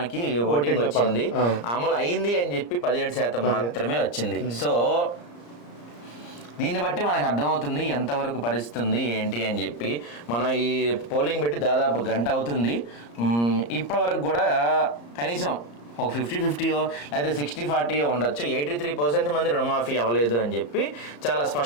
ఓటింగ్ వచ్చింది, అమలు అయింది అని చెప్పి 17% మాత్రమే వచ్చింది. సో దీన్ని బట్టి మనకు అర్థమవుతుంది ఎంతవరకు పరిస్థితి ఉంది ఏంటి అని చెప్పి. మనం ఈ పోలింగ్ పెట్టి దాదాపు గంట అవుతుంది. ఇప్పటి వరకు కూడా కనీసం ఒక 50-50 లేకపోతే 60-40 ఉండొచ్చు. 83% మంది రుణమాఫీ అవ్వలేదు అని చెప్పి చాలా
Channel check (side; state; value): right; late; 34 ms